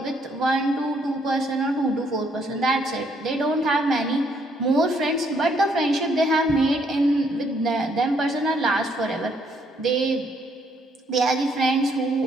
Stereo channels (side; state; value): both; normal; correlation 0.70